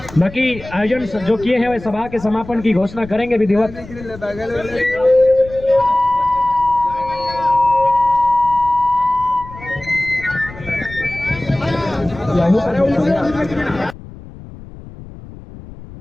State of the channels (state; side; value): noise; left; rumble, 16 dB below the sound